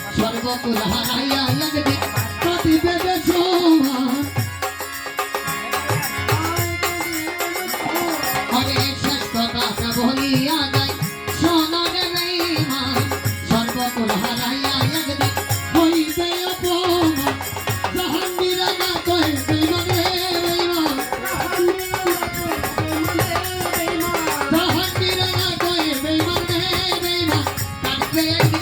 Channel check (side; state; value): both; identical; correlation 1.00